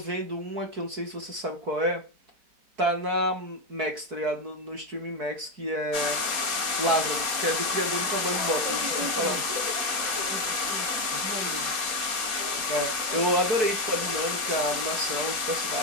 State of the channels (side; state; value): left; late; 4.2 ms